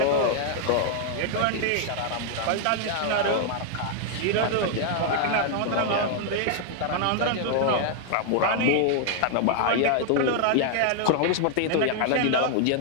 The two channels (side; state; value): both; different; correlation 0.00